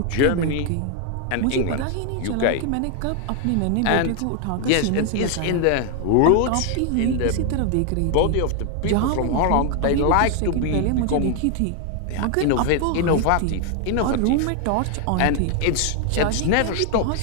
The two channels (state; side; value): different; both; correlation 0.00